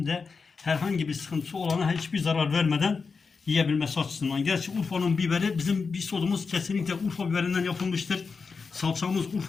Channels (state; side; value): quieter; right; 4.9 dB